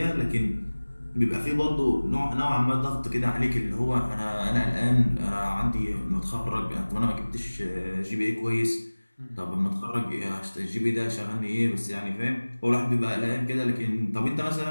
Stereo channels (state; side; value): inverted; both; correlation -1.00